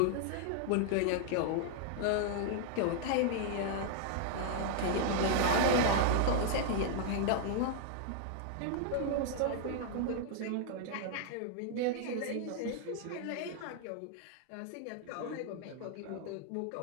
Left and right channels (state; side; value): different; both; correlation 0.00